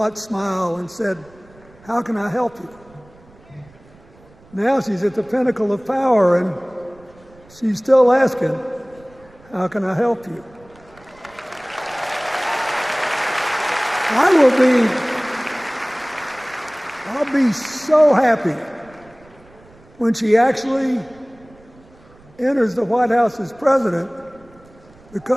smile and said, "How can I help you?" Now she's at the pinnacle of power and she's still asking, "How can I help you?" I'll be so happy when she actually enters the White House as president,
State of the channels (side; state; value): right; noise; rumble, 26 dB below the sound